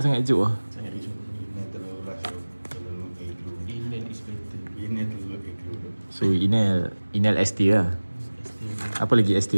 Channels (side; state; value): both; inverted; correlation -1.00